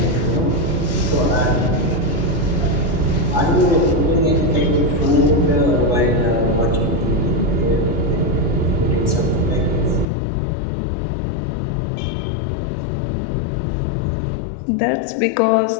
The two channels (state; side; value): drops out; right; at 10.1 s